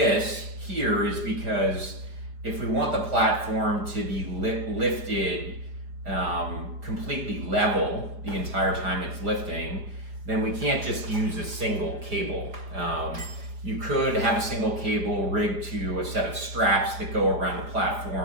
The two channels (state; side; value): late; left; 4.9 ms